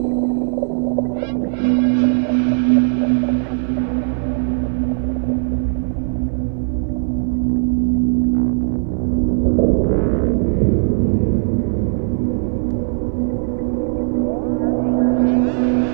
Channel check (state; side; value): silent; left; 64 dB below the other